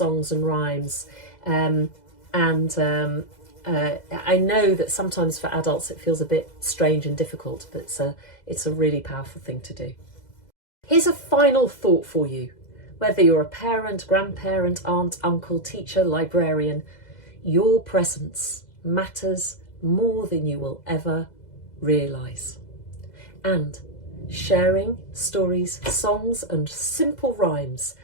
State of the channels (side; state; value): right; late; 2.0 ms